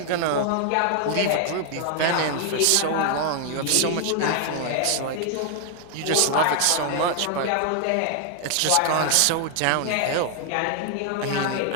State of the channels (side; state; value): both; different; correlation 0.00